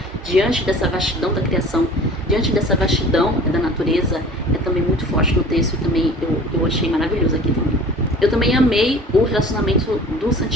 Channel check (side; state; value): both; normal; correlation 0.44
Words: diante dessa vastidão da criação, diante dessa vastidão da natureza, é também muito forte no texto e também eu achei maravilhoso aqui também. Eu também amei o relacionamento do